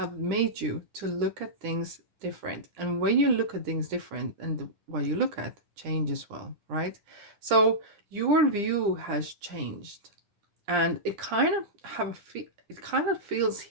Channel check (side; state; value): left; late; 10 ms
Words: made you to look at things different. And when you look at things different, and what you look at change as well, right? So your view has changed, and it kind of feels